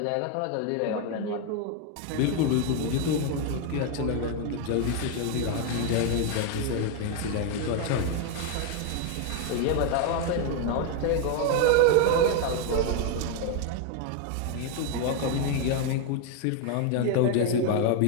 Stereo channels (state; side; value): different; both; correlation 0.01